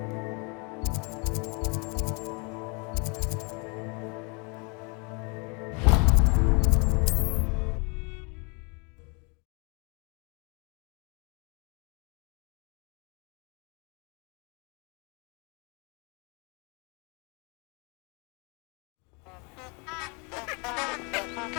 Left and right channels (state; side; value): quieter; right; 32.8 dB